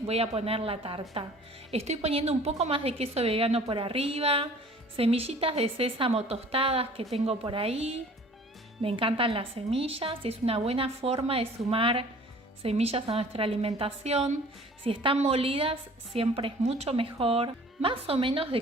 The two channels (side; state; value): both; normal; correlation 0.49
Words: voy a poner la tarta. Estoy poniendo un poco más de queso vegano por arriba, semillitas de sésamo tostadas que tengo por ahí. Me encantan las semillas, es una buena forma de sumar semillas a nuestra alimentación. Si están molidas, siempre es mucho mejor. Más o menos de